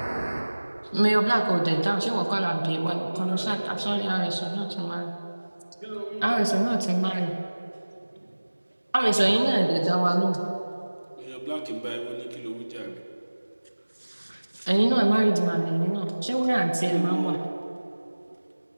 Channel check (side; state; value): both; inverted; correlation -1.00